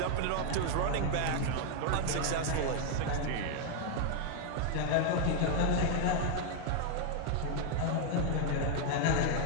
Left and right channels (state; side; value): different; both; correlation 0.00